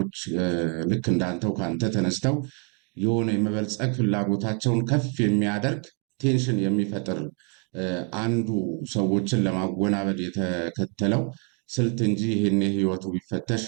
ልክ እንዳንተው ካንተ ተነስተው የሆነ የመበልጸግ ፍላጎታቸውን ከፍ የሚያደርግ ቴንሽን የሚፈጥር አንዱ ሰዎችን ለማወናበድ የተከተለው ስልት እንጂ ይህን ህይወቱ ቢፈተሽ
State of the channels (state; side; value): quieter; left; 38.5 dB